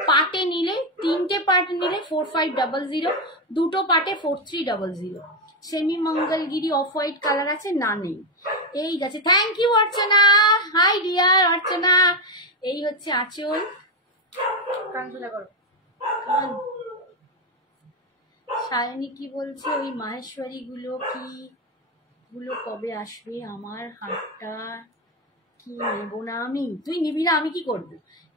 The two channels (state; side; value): normal; both; correlation 0.09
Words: পাটে নিলে, তিনটে পাট নিলে 4500, দুটো পাটে 4300। Semi Mangalagiri off white colour আছে, না নেই। এই গেছে, thank you Archana, hi dear Archana. এই হচ্ছে আঁচল, সায়নী কি বলছে, ওই মাহেশ্বরী গুলো কি গুলো কবে আসবে? আমার হাতটা কি নেবো না আমি? তুই নিবি না, আমি কি করবো?